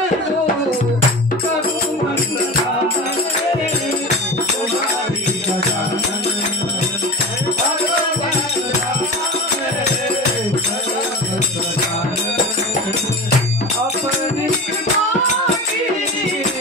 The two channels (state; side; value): normal; both; correlation 0.30